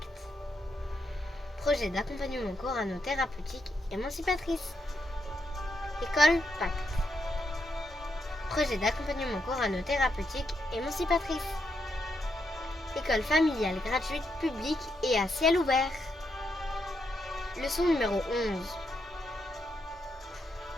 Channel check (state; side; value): normal; both; correlation 0.80